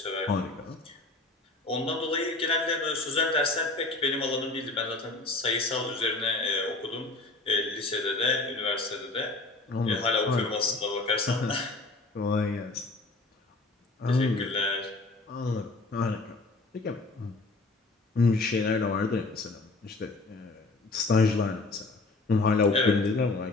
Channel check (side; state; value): right; quieter; 3.3 dB